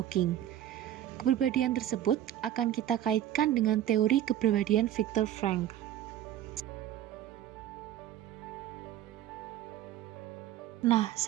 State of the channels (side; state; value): left; quieter; 11.9 dB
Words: Kepribadian tersebut akan kita kaitkan dengan teori kepribadian Viktor Frankl. Nah,